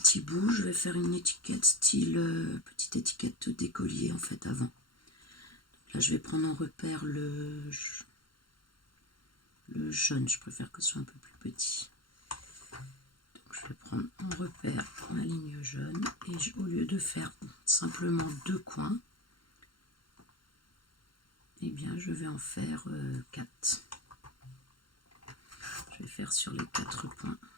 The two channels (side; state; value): right; late; 0.73 ms